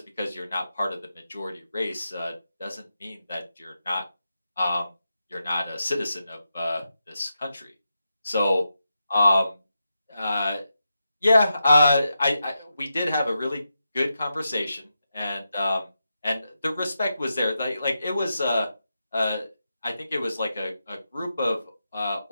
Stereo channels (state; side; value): inverted; both; correlation -0.87